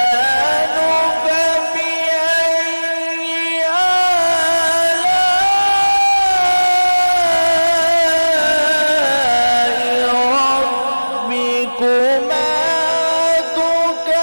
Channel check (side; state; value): both; inverted; correlation -1.00